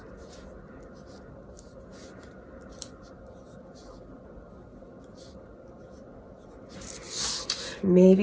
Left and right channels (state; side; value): identical; both; correlation 1.00